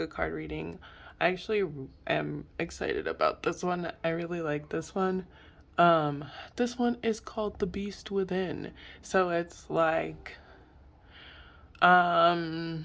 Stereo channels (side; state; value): both; identical; correlation 1.00